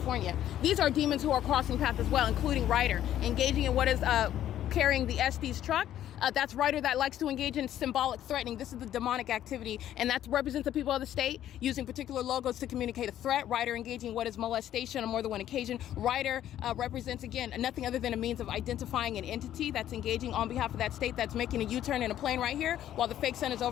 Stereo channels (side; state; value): right; quieter; 11.7 dB